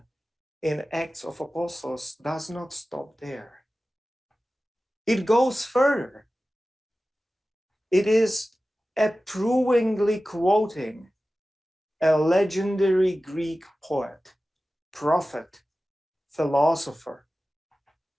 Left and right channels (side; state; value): both; normal; correlation 0.95